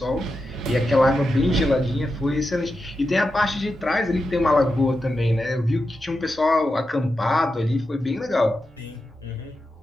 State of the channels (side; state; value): both; normal; correlation 0.89